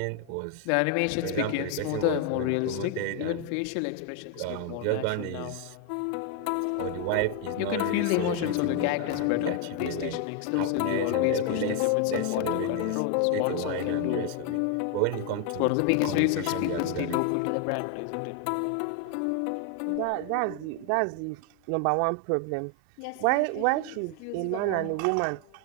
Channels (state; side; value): different; both; correlation 0.01